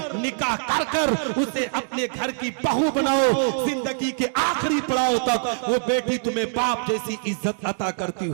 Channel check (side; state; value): left; silent; 63 dB below the other